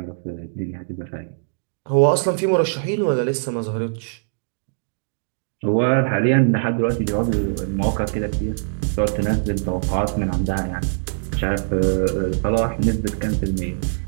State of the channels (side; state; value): left; silent; digital silence